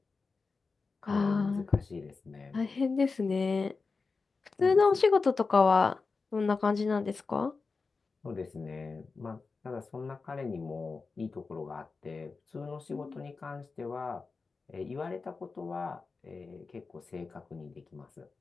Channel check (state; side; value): quieter; right; 4.3 dB